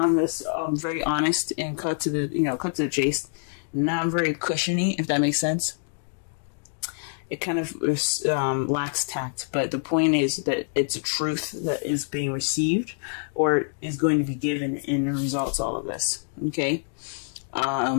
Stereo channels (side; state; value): right; silent; digital silence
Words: very honest and cut to the chase, not very cushiony, if that makes sense. It kind of lacks tact, but the point is that it's a truth that is being received or is going to be given in results all of this. Okay,